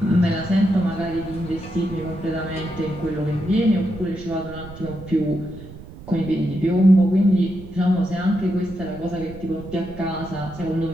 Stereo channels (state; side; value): noise; right; rumble, 15 dB below the sound